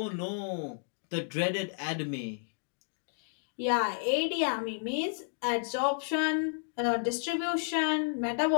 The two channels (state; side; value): silent; right; digital silence